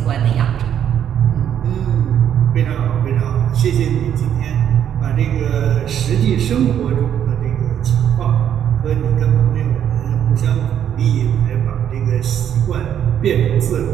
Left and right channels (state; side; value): quieter; left; 9.5 dB